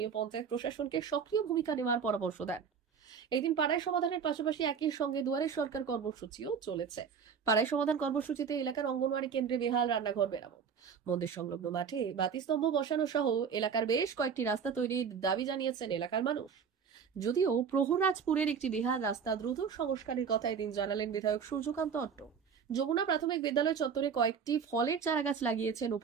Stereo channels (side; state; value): left; quieter; 6.7 dB